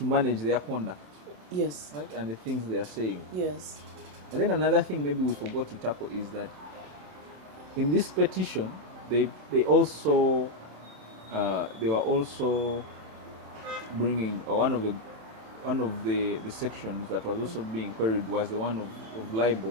their conduct. Yes. Right, and the things they are saying. Yes. And then another thing maybe we forgot to tackle is that in this petition, they also they were also bringing one of the sections that was also being queried was the one of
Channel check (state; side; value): late; left; 27 ms